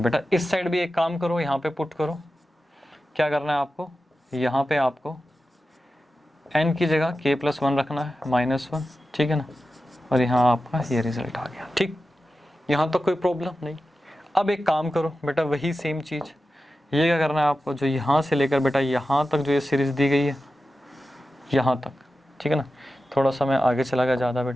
इस साइड भी एक काम करो, यहाँ पे पुट करो, क्या करना है आपको, यहाँ पे आपको n की जगह k plus 1 रखना है, -1, ठीक है ना। और यहाँ आपका ये रिजल्ट आ गया, ठीक। यहाँ तक कोई प्रॉब्लम नहीं। अब एक काम करो बेटा, वही सेम चीज़, ये क्या करना है आपको, जो यहाँ से लेकर बेटा यहाँ तक जो ये सीरीज़ दी गई है, यहाँ तक, ठीक है ना। थोड़ा सा मैं आगे चला गया ज़्यादा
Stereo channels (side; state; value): both; normal; correlation 0.93